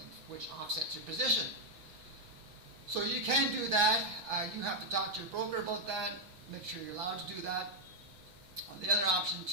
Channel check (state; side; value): late; left; 5.1 ms